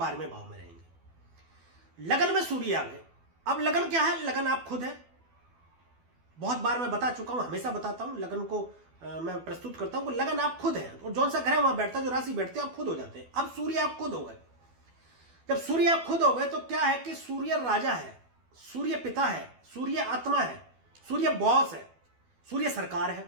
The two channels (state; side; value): late; left; 12 ms